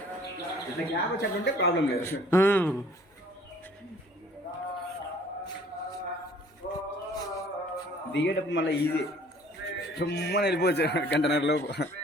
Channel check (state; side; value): normal; both; correlation 0.55